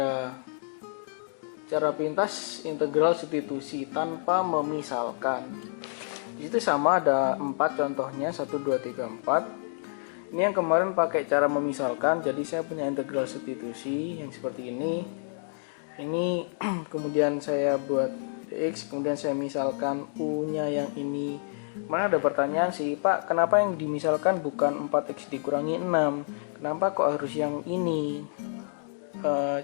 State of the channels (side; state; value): right; silent; digital silence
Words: cara pintas integral substitusi tanpa memisalkan. Di situ sama ada 4 contohnya, 1, 2, 3, 4. Ini yang kemarin pakai cara memisalkan, jadi saya punya integral substitusi yang seperti ini. Ini kemudian saya buat dx, kemudian saya misalkan u-nya yang ini. Mana ada pertanyaan sih, Pak, kenapa yang dimisalkan bukan 4x dikurangi 6? Kenapa kok harus yang ini?